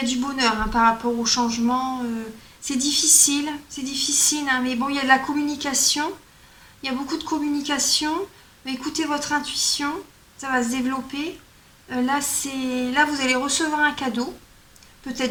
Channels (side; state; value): both; identical; correlation 1.00